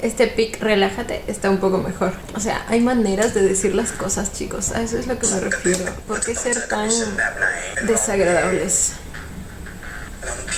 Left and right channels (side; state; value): both; identical; correlation 1.00